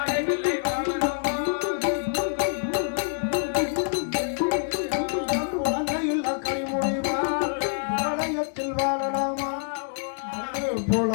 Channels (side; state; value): right; silent; digital silence